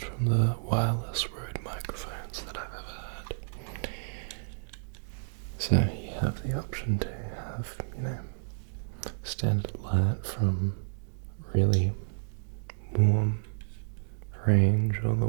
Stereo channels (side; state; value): left; silent; digital silence